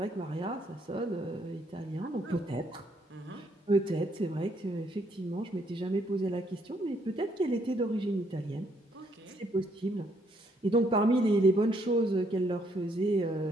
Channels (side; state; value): both; normal; correlation 0.70